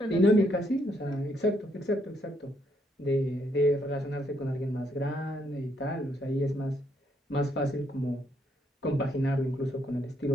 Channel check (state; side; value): normal; both; correlation 0.73